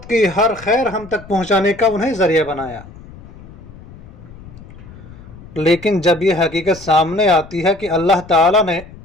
کی ہر خیر ہم تک پہنچانے کا انہیں ذریعہ بنایا۔ لیکن جب یہ حقیقت سامنے آتی ہے کہ اللہ تعالیٰ نے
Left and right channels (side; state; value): left; noise; rumble, 19 dB below the sound